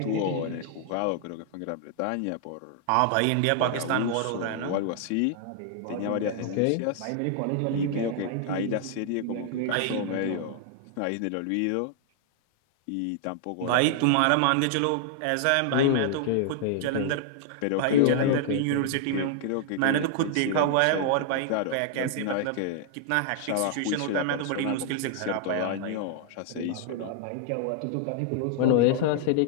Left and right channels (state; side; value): different; both; correlation -0.01